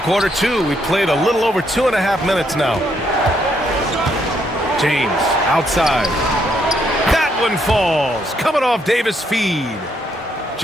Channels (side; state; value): both; normal; correlation 0.74